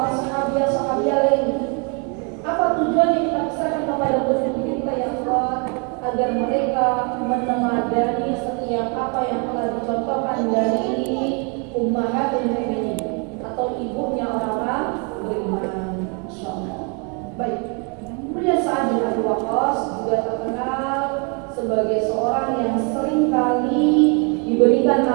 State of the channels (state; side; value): quieter; left; 35.6 dB